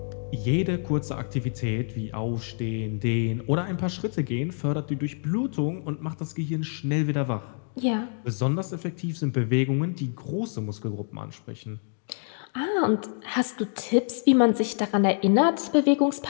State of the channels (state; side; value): silent; right; 55 dB below the other